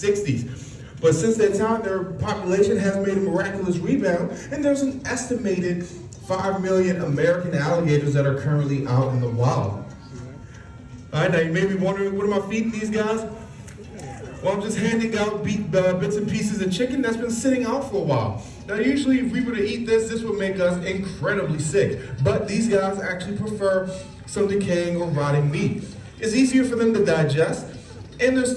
But since that time, their population has made a miraculous rebound, and there's an estimated 5 million American alligators that are currently out in the wild. All right, now you may be wondering, what am I feeding these guys? Well, I'm just handing out bits and pieces of chicken that's been sitting out for a while. Now, usually if we were to eat this would make us incredibly sick. But these guys actually prefer some decaying or rotting meat. It's easier for them to digest, and their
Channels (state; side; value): identical; both; correlation 1.00